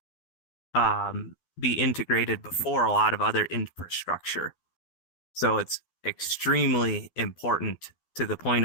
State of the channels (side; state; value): right; late; 12 ms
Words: be integrated before a lot of other infrastructure. So it's extremely important to the